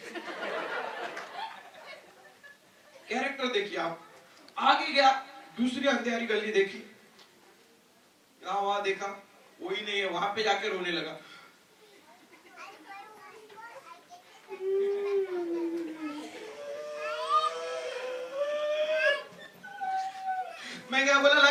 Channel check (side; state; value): both; identical; correlation 1.00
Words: कैरेक्टर देखिए आप। आगे गया, दूसरी अंधेरी गली देखी, यहाँ वहां देखा कोई नहीं है, वहां पे जाके रोने लगा। मैं क्या बोला